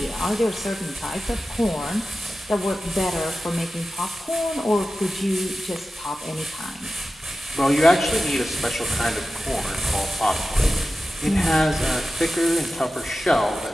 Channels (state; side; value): normal; both; correlation 0.94